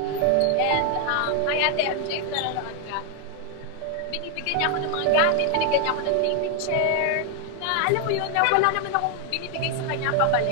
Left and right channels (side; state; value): both; different; correlation 0.00